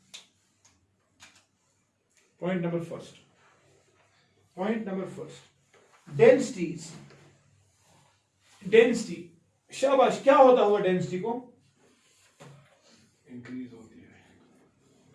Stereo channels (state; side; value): identical; both; correlation 1.00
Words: Point number first, density. शाबाश, क्या होता हुआ डेंसिटी को? इंक्रीज होती है।